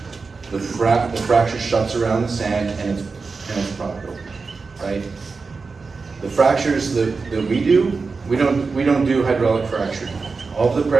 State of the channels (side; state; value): left; quieter; 4.5 dB